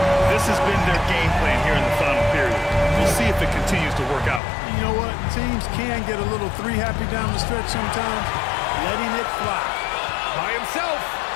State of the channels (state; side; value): drops out; right; at 4.4 s